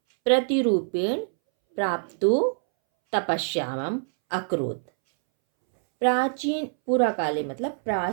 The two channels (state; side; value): silent; left; 62 dB below the other